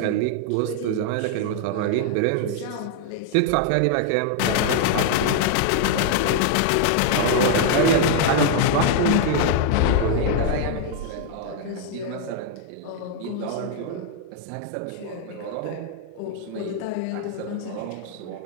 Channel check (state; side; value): different; both; correlation 0.00